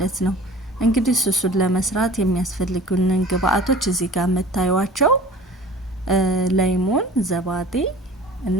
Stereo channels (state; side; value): normal; both; correlation 0.43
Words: ነው። እንግዲህ ሱሱን ለመስራት የሚያስፈልጉንን ግብአቶች እዚህ ጋር የምታዩዋቸው ላይሞን፣ ዘባዴ